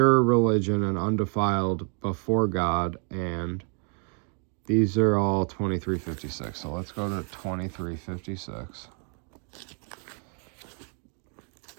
religion and undefiled before God, and these are all 23:56. So let's go to 23:56.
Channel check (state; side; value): quieter; left; 39.9 dB